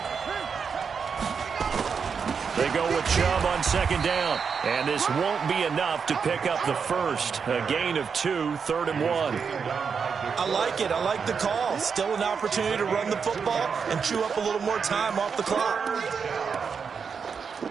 They go with Chubb on 2nd down. And this won't be enough to pick up the first. A gain of 2, 3rd and 1. I like it. I like the call. Still an opportunity to run the football and chew up a little more time off the clock.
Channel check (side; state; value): left; quieter; 6.1 dB